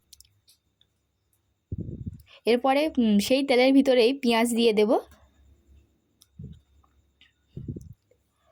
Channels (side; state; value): both; identical; correlation 1.00